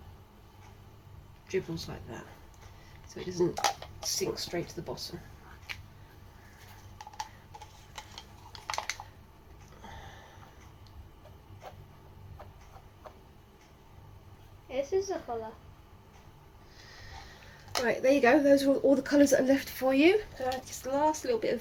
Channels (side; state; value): both; identical; correlation 1.00